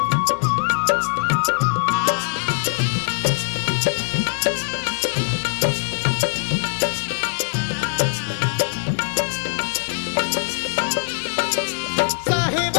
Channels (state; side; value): silent; right; 60 dB below the other